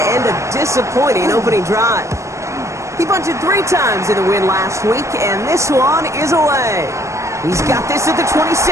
end a disappointing opening drive. He punted 3 times in the win last week, and this one is away. He's got this at the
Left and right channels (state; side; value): late; left; 0.14 ms